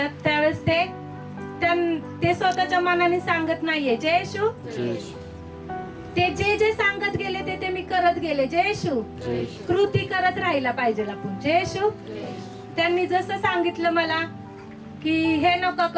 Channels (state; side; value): identical; both; correlation 1.00